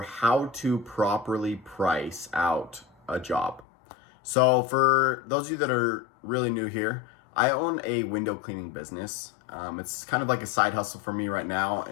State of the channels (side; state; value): right; drops out; at 3.7 s